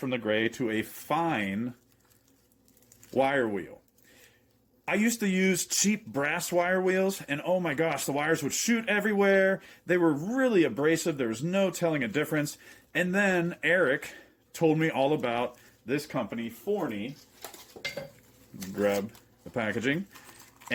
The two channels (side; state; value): both; identical; correlation 1.00